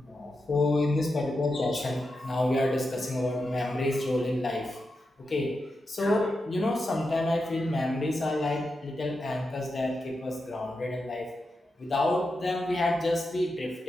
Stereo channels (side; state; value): both; normal; correlation 0.88